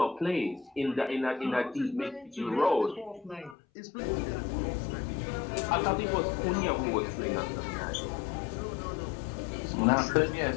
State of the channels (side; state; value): right; drops out; at 3.6 s